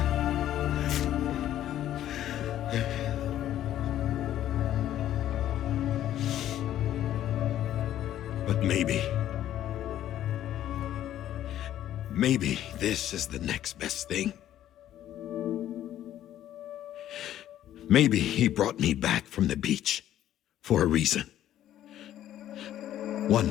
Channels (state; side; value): quieter; right; 12.1 dB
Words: But maybe this is the next best thing. Maybe he brought me back from the beach for a reason. One